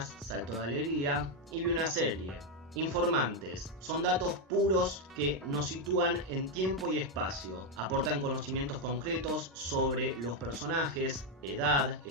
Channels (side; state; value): both; normal; correlation 0.04